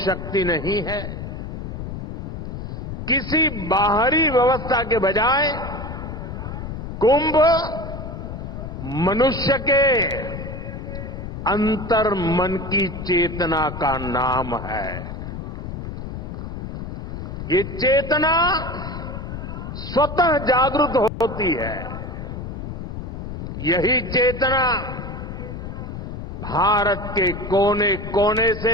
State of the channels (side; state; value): left; noise; rumble, 7 dB below the sound